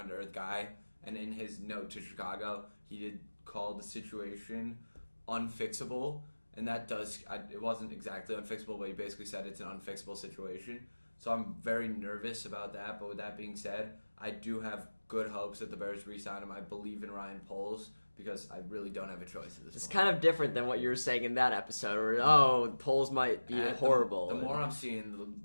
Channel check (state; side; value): inverted; both; correlation -1.00